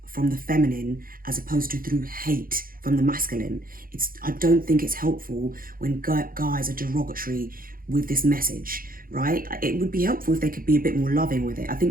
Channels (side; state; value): left; late; 0.42 ms